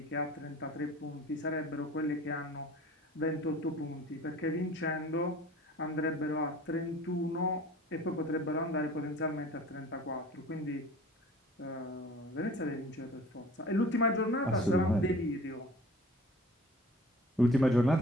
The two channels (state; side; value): normal; both; correlation 0.45